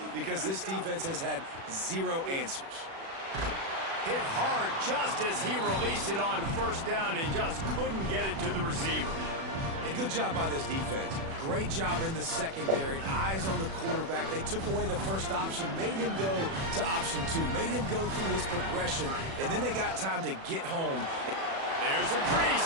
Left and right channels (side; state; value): left; late; 36 ms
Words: because this defense has had zero answers. Hit hard just as he released it on first down and just couldn't get it to the receiver. A good job by this defense. Great job in the secondary. Eyes on the quarterback. They took away the first option, made him go to option 2, made him go through his progression, and then they got time to get home. There's a